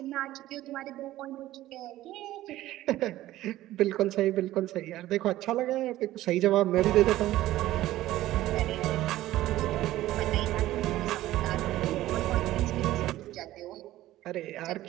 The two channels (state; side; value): quieter; left; 15.2 dB